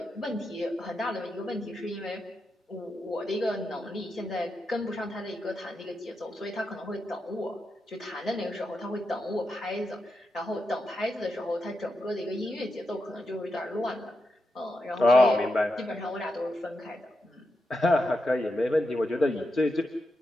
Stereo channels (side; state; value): both; normal; correlation 0.86